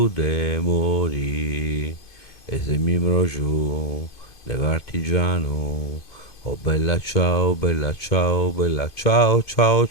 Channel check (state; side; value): late; right; 2.4 ms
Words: de morì. E se mi giù, dell'artigiano, oh bella ciao, bella ciao, bella ciao, ciao,